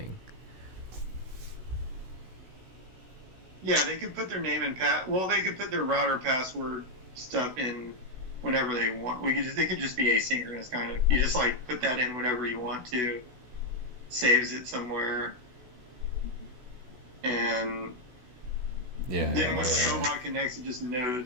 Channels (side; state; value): left; late; 16 ms